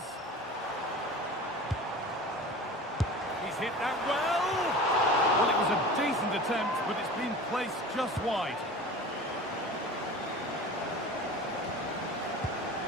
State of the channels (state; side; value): normal; both; correlation 0.37